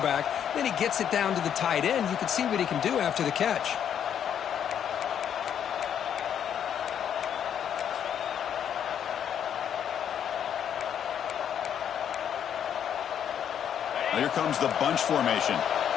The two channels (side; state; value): right; quieter; 9.0 dB